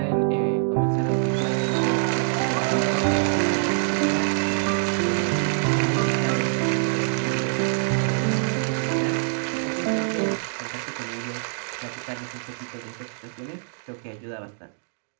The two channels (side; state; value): left; silent; digital silence